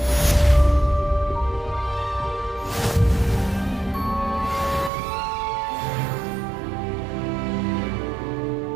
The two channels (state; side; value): drops out; left; at 4.9 s